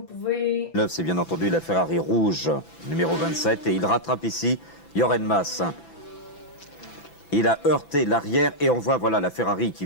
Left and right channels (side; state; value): right; late; 6.0 ms